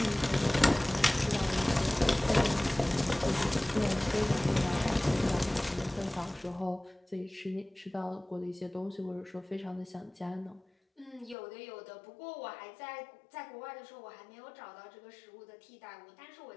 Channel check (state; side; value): drops out; right; at 11.4 s